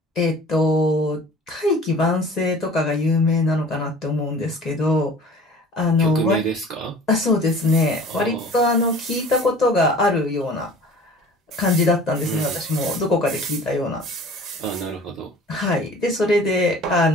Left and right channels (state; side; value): normal; both; correlation 0.45